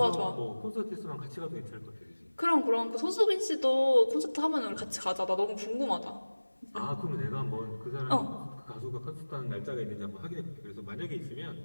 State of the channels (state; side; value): inverted; both; correlation -1.00